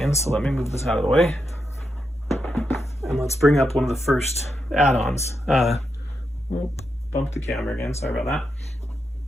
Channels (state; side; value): normal; both; correlation 0.85